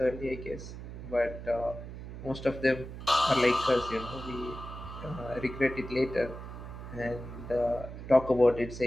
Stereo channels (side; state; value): right; noise; hum, 11 dB below the sound